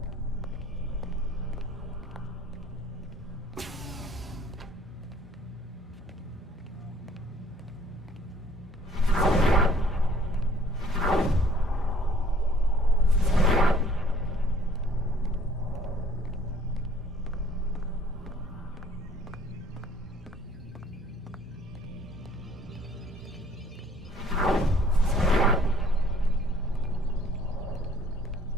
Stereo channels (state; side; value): normal; both; correlation 0.57